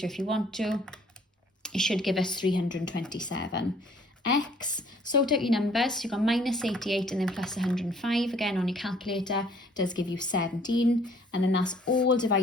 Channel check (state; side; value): normal; both; correlation 0.59